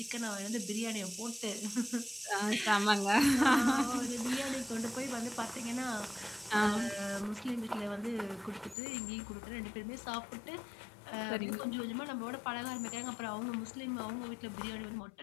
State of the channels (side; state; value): right; drops out; at 8.8 s